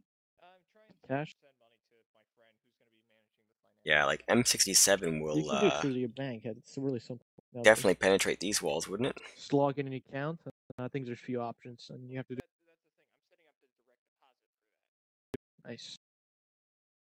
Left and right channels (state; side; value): identical; both; correlation 1.00